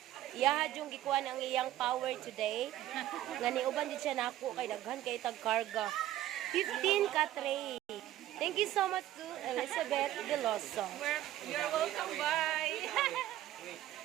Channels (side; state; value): left; quieter; 13.6 dB